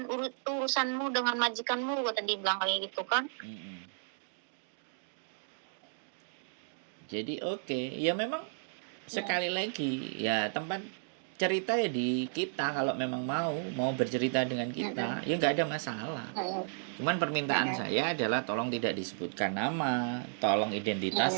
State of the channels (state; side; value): silent; left; digital silence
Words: urusanmu dengan majikanmu, kata dia bilang kayak gitu kan. Jadi ya memang sekali lagi, ya tempat cerita ya di kita. Kalau memang mau bercerita dengan kita, ya nggak ada masalah. Cuman permintaan saya adalah tolong tidak disebutkan nama, tolong identitas